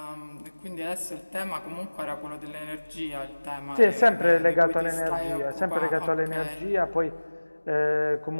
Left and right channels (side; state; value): both; inverted; correlation -1.00